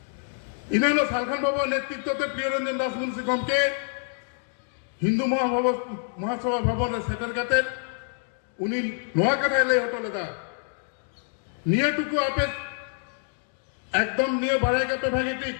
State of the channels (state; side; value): silent; right; 56 dB below the other